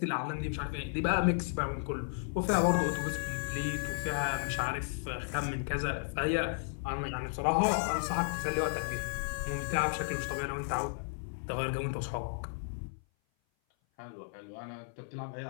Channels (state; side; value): silent; right; 55 dB below the other